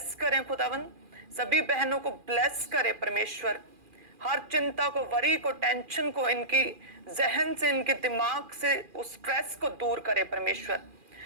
करें खुदावन, सभी बहनों को ब्लेस करे परमेश्वर। हर चिंता को, वरी को, टेंशन को इनकी जहन से, इनके दिमाग से उस स्ट्रेस को दूर करे परमेश्वर।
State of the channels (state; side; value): late; left; 2.4 ms